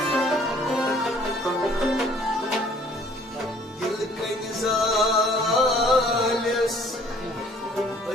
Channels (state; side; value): normal; both; correlation 0.57